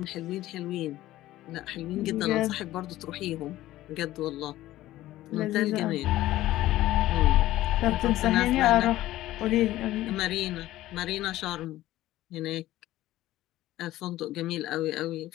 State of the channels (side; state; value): right; quieter; 15.4 dB